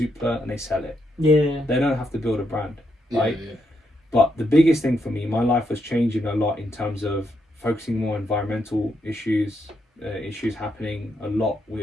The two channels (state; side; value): normal; both; correlation 0.79